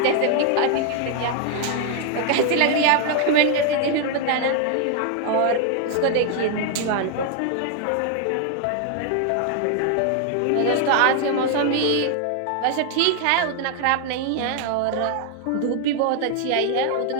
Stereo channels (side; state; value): both; different; correlation 0.00